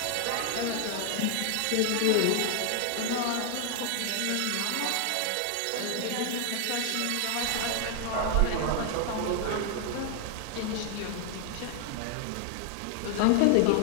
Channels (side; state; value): both; different; correlation 0.00